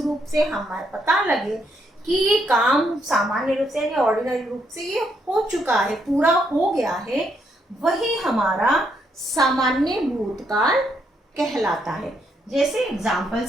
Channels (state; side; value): normal; both; correlation 0.75